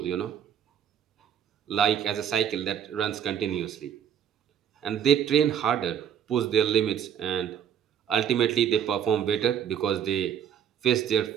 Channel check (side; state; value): left; quieter; 8.9 dB